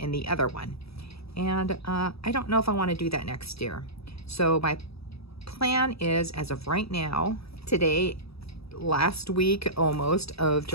the other one. And I don't know if I want to do that next year. So my plan is, as of right now, today, last week almost of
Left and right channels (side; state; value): right; late; 0.77 ms